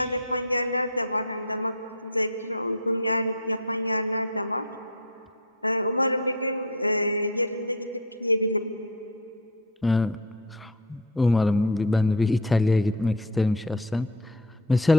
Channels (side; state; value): both; normal; correlation 0.18